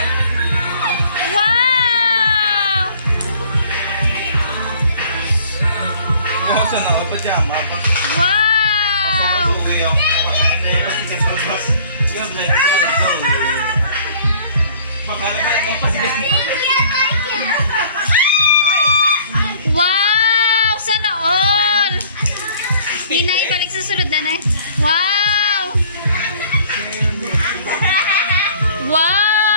Wow! Gusto na ako pajama pa. Wow! Uwi ako. Pati ka pa bas. Yung like bakala ba yung pasigas Wow! Sana all! Ninay, balik sa sunod na eh. Wow!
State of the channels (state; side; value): inverted; both; correlation -0.54